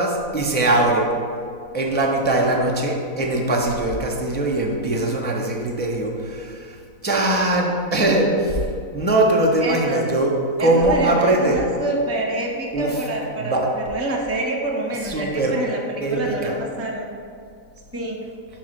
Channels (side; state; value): right; late; 4.0 ms